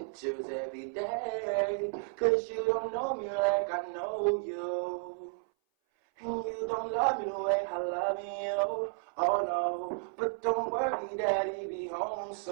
every day. Cause you don't know me like I know you. And you don't love me the way I love you. Oh no, but don't worry, daddy be home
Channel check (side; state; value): left; silent; 56 dB below the other